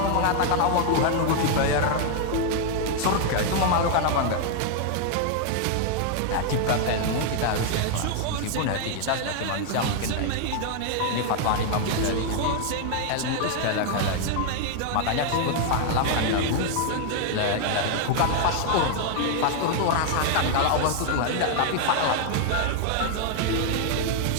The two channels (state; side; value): different; both; correlation 0.00